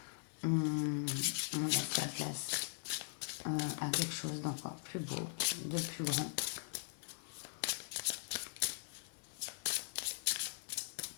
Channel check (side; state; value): right; silent; digital silence